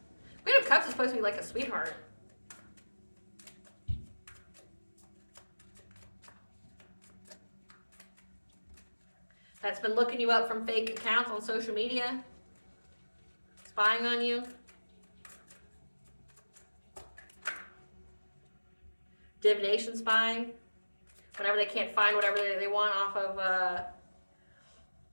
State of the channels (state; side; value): inverted; both; correlation -1.00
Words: Queen of Cups is supposed to be like a sweetheart. That's been looking you up from fake accounts on social media. Spying on you. Divination spying. Whenever they can't find whatever they want off of